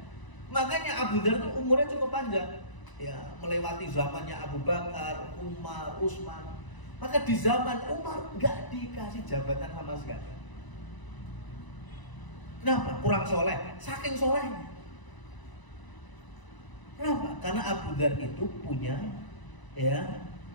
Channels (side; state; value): right; late; 1.0 ms